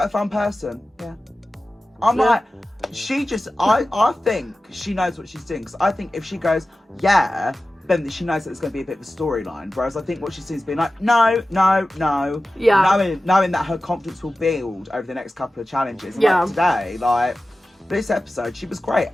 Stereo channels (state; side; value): normal; both; correlation 0.95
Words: a fun person? Yeah. I'm like, she just, I think she knows what she's doing. Because I think if she goes, yeah, then she knows that it's going to be a bit of a storyline. Whereas I think what she seems to be like, no. Yeah. Knowing that her confidence will build over the next couple of challenges. And like today, like, this episode, she was great.